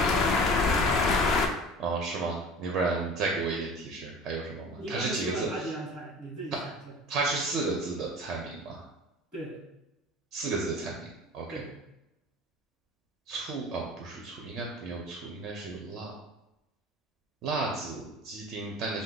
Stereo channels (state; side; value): normal; both; correlation 0.40